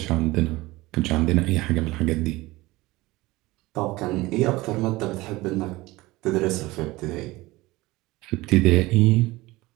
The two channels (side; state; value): left; quieter; 20.1 dB